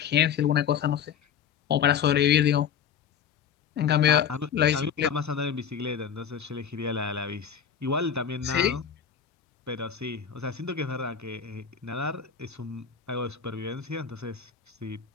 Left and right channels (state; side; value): quieter; right; 7.9 dB